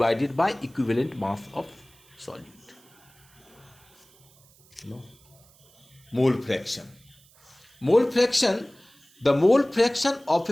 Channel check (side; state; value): right; noise; hiss, 29 dB below the sound